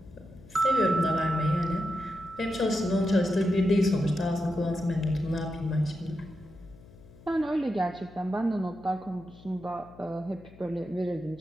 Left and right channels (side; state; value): left; noise; hum, 22 dB below the sound